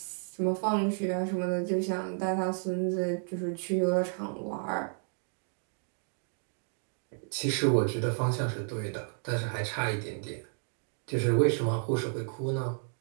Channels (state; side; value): silent; left; 57 dB below the other